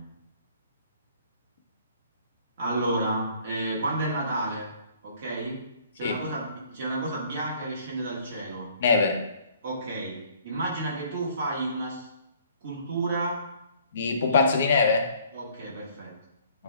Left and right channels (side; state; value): both; inverted; correlation -0.58